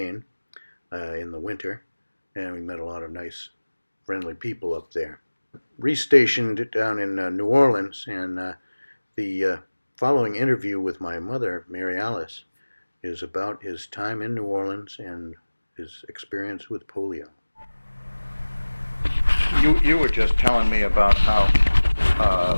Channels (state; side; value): inverted; both; correlation -1.00